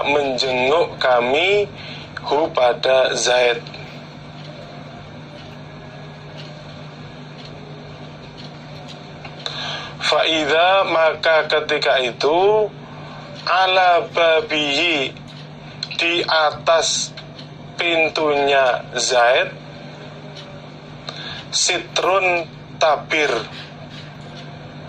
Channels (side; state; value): both; identical; correlation 1.00